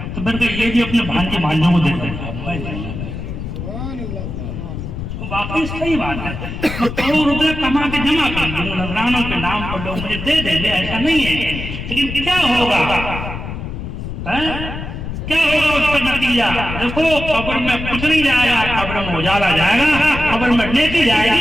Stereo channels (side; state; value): left; noise; rumble, 7 dB below the sound